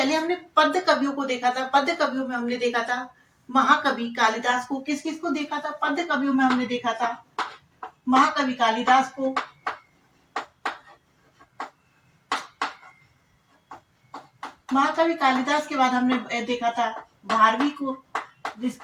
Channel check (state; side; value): identical; both; correlation 1.00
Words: पद्य कवियों को देखा था। पद्य कवियों में हमने देखा था महाकवि कालिदास को। किस किस को देखा था? पद्य कवियों में हमने देखा था महाकवि कालिदास को, महाकवि कालिदास के बाद हमने देखा था भारवी को,